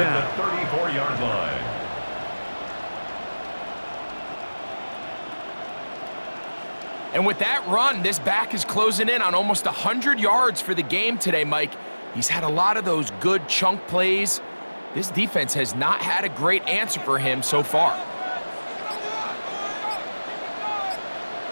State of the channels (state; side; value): inverted; both; correlation -1.00